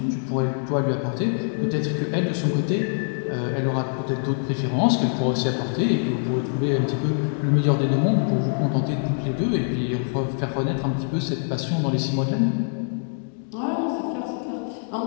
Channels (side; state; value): right; silent; digital silence